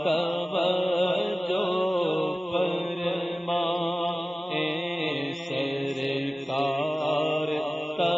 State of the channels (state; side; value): normal; both; correlation 0.97